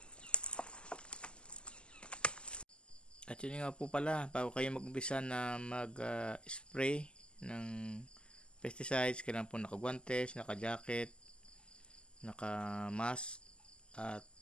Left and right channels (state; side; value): late; right; 0.050 ms